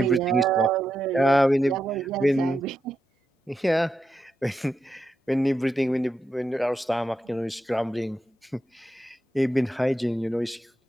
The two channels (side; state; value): both; normal; correlation 0.86